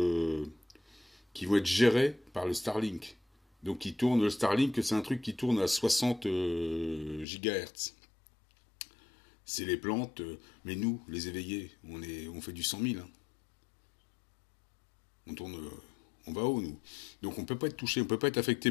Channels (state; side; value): drops out; right; at 7.2 s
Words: qui vont être gérés par le Starlink. Donc qui tourne, le Starlink, c'est un truc qui tourne à 60 GHz. C'est les plantes, mais nous, les éveillés, on fait du 100 000. Hein. On va haut, nous. Donc on peut pas être touché, on peut pas être affecté.